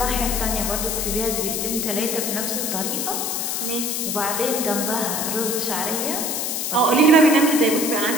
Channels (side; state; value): left; noise; hiss, 1 dB below the sound